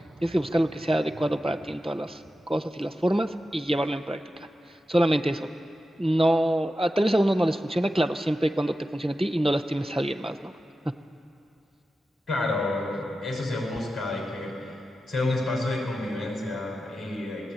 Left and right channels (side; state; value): both; normal; correlation 0.92